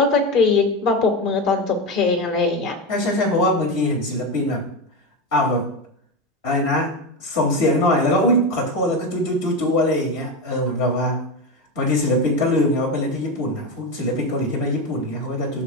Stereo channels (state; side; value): normal; both; correlation 0.16